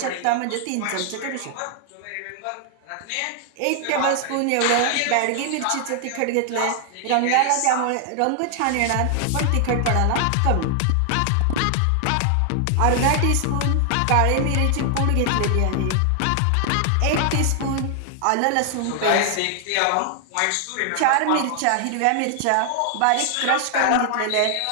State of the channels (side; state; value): both; different; correlation 0.00